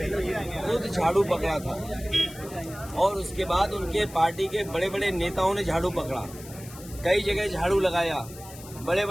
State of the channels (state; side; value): noise; left; hiss, 17 dB below the sound